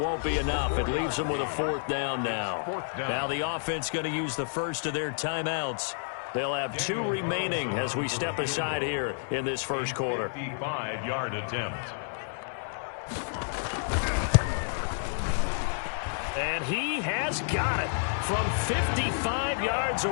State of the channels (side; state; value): right; silent; 58 dB below the other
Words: be enough. It leaves them with a 4th down now. Now the offense going to use the first of their timeouts. They'll have 2 remaining as we step aside here in this first quarter. 55-yard attempt. And he has got it from 55 yards